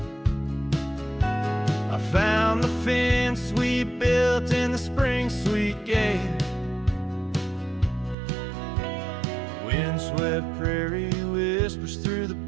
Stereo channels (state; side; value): drops out; left; at 8.2 s